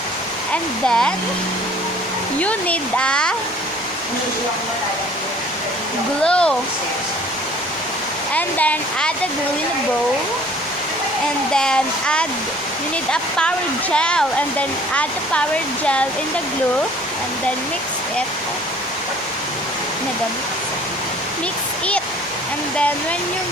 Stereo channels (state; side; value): normal; both; correlation 0.52